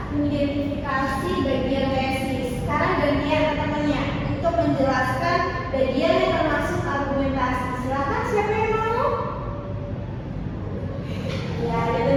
mengidentifikasi bagian tesis. Sekarang gantian temannya untuk menjelaskan bagian yang termasuk argumentasi. Silakan, siapa yang mau? Ya, dia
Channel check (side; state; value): both; identical; correlation 1.00